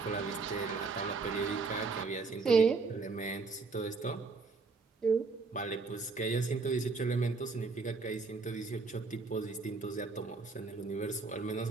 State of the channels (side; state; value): left; quieter; 4.2 dB